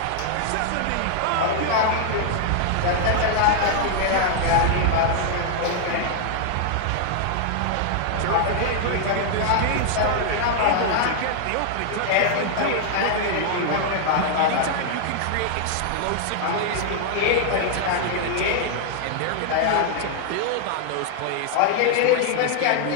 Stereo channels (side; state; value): both; different; correlation 0.00